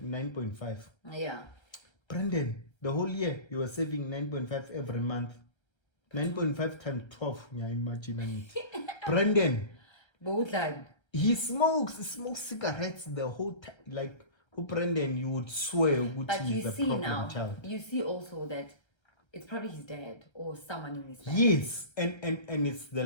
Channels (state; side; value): late; right; 1.3 ms